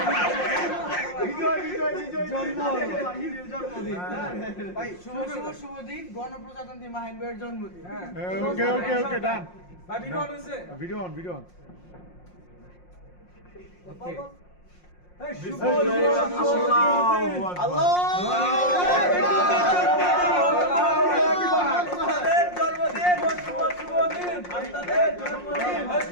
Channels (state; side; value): late; right; 5.6 ms